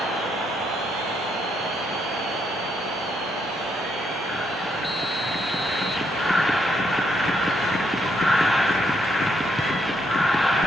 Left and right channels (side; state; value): both; normal; correlation 0.75